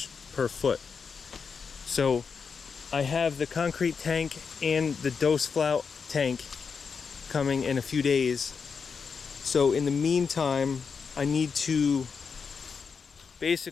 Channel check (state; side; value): quieter; right; 5.7 dB